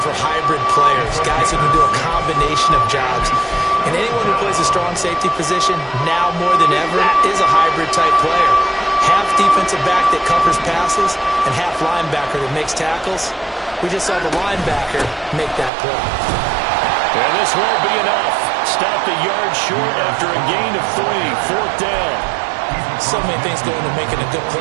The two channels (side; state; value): left; drops out; at 15.7 s